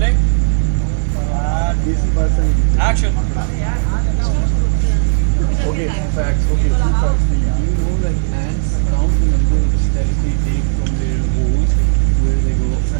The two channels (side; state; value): left; silent; digital silence